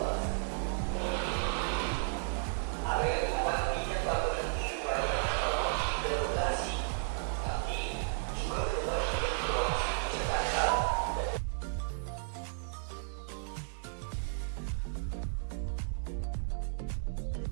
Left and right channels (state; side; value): silent; left; digital silence